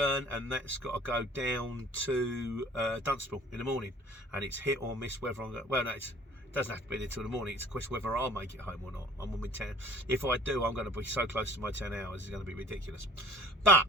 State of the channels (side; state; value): both; normal; correlation 0.50